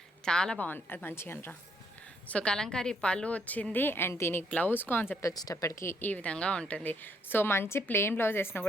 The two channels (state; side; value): normal; both; correlation 0.71